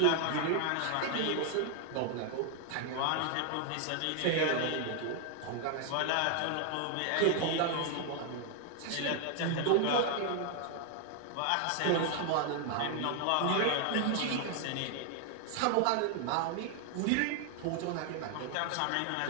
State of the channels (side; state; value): both; different; correlation 0.00